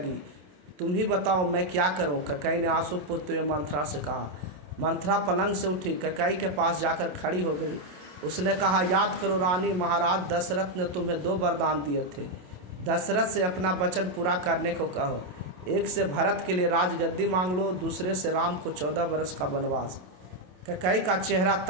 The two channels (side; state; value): left; late; 27 ms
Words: तुम ही बताओ मैं क्या करूं? कैकेयी ने आंसू पोंछते हुए मंथरा से कहा। मंथरा पलंग से उठी, कैकेयी के पास जाकर खड़ी हो गई। उसने कहा, याद करो रानी, महाराज दशरथ ने तुम्हें 2 वरदान दिए थे। दशरथ से अपना वचन पूरा करने को कहो। एक से भरत के लिए राजगद्दी मांग लो, दूसरे से राम को 14 वर्ष का वनवास। कैकेयी का चेहरा